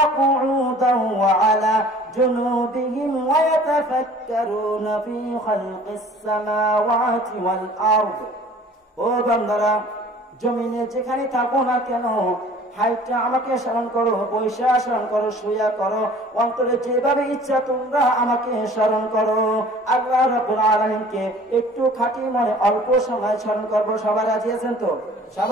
কুউদান ওয়া আলা জুনুবিহিম ওয়া ইয়াতাফাক্কারুনা ফী খালকিস সামাওয়াতি ওয়াল আরদ। ও বান্দারা, জমিনে যেখানে থাকো না কেন, হাইটা আমাকে স্মরণ করো, বৈশা স্মরণ করো, শুয়া করো, অন্তরে যেভাবে ইচ্ছা তোমরা আমাকে স্মরণ করো। আল্লাহ রাব্বুল আলামিনকে একটু খাঁটি মনে অল্প সময় স্মরণ করবো। সবাই রাজি আছেন তো?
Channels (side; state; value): both; normal; correlation 0.49